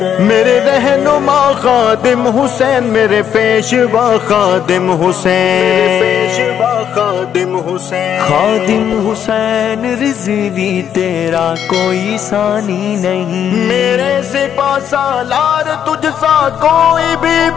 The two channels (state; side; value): quieter; right; 9.1 dB